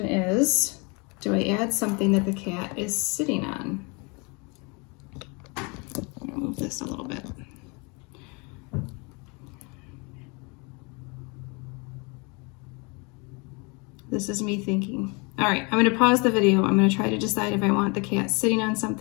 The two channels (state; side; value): quieter; right; 30.5 dB